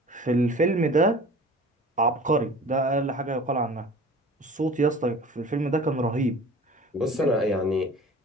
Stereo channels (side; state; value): both; normal; correlation 0.43